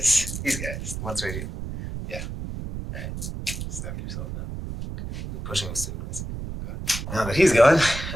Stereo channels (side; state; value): right; noise; rumble, 7 dB below the sound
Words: These guys, the ones right here. Yeah. Alright. Step yourself out. You're pushing us to the place. Now that he's gone,